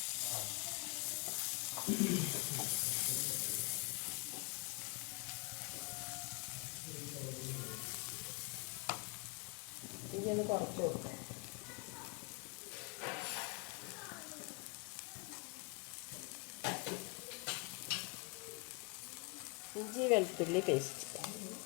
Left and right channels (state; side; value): quieter; right; 31.9 dB